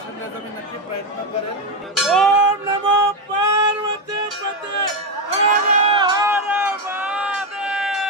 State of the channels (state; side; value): normal; both; correlation 0.09